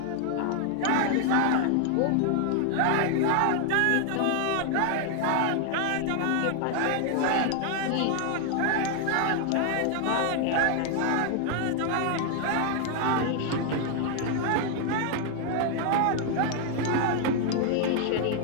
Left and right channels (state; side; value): different; both; correlation 0.00